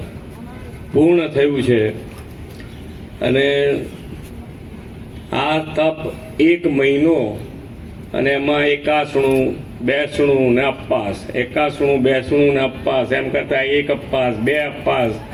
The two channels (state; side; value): identical; both; correlation 1.00